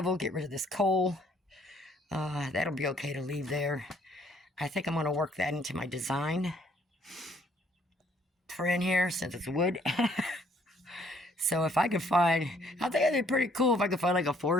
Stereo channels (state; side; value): normal; both; correlation 0.64